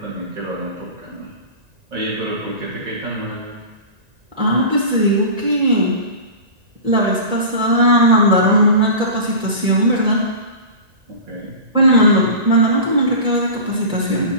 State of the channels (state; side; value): late; left; 1.9 ms